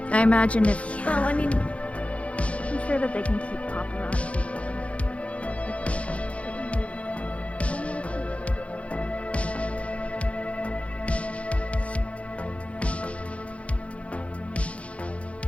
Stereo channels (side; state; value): right; late; 0.063 ms